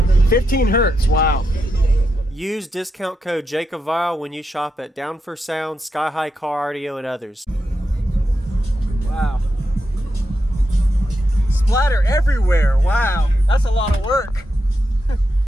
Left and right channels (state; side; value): normal; both; correlation 0.85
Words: 15 hertz, wow. Use discount code JacobViral when you shop at Down for Sound, SkyHigh Car Audio, and others. Wow. Splatter everywhere, wow. That's a lot of work.